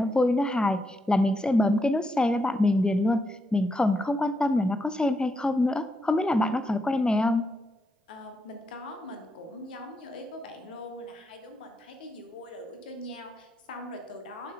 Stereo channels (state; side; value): normal; both; correlation 0.83